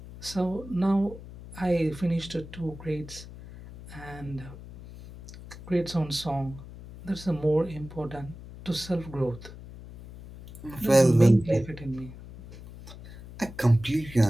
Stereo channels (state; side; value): noise; left; hum, 15 dB below the sound